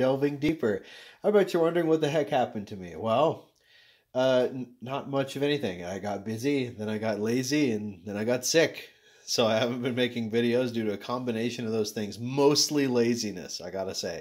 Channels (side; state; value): both; identical; correlation 1.00